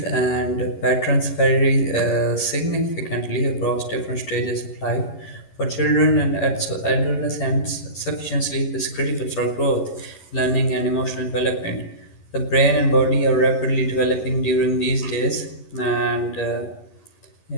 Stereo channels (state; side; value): late; right; 11 ms